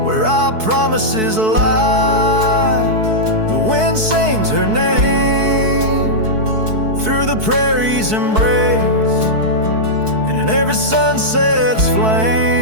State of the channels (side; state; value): left; late; 4.6 ms